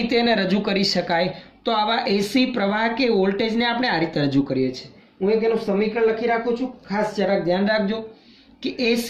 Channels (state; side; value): identical; both; correlation 1.00